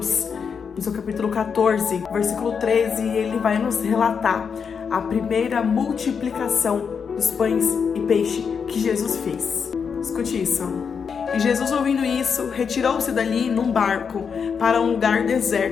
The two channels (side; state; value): right; quieter; 6.3 dB